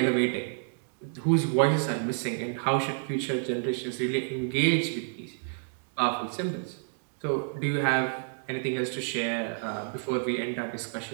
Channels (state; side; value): silent; left; digital silence